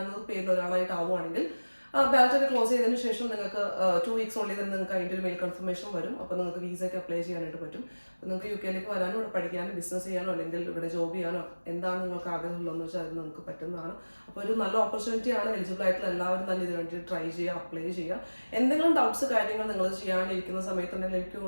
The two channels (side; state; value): both; inverted; correlation -1.00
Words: പേരിൽ ഒരാളായിട്ട് ആവുകയാണെങ്കിൽ ബാലറ്റ് ഒക്കെ ക്ലോസ് ചെയ്തതിന് ശേഷം നിങ്ങൾക്ക് 2 വീക്സ് ഉള്ളിൽ തന്നെ നിങ്ങൾക്ക് അതിൻ്റെ ഒരു മെയിൽ കൺഫർമേഷൻ വരും. അപ്പോൾ നിങ്ങൾക്ക് വിസയ്ക്ക് അപ്ലൈ ചെയ്യാനായിട്ട് പറ്റും. അപ്പോൾ നിങ്ങൾക്ക് UK വരാനോ ഇവിടെ പഠിക്കാനോ ബിസിനസ് ചെയ്യാനോ അല്ലെങ്കിൽ ഇവിടെ ജോബ് ചെയ്യാനോ എന്താണ് നിങ്ങൾക്ക് ആഗ്രഹമുള്ളതെന്ന് വെച്ചാൽ അത് നിങ്ങൾക്ക് പറ്റുന്നതാണ്. അപ്പോൾ ഒരു നല്ല ഓപ്പർച്യൂണിറ്റിയാണ്. എലിജിബിൾ ആയിട്ടുള്ള എല്ലാവരും തന്നെ ഇതിന് വേണ്ടി ട്രൈ ചെയ്യുക, അപ്ലൈ ചെയ്യുക. എന്തെങ്കിലും ഡൗട്ട്സ് കാര്യങ്ങൾ നിങ്ങൾ ചെയ്യാനിരിക്കുന്ന സമയത്തുണ്ടെങ്കിൽ എനിക്ക്